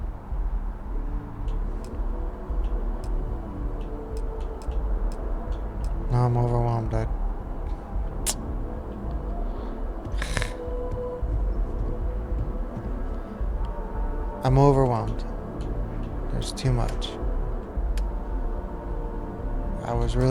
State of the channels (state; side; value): identical; both; correlation 1.00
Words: No, I'm overwhelmed. I'm overwhelmed. There's too much. I was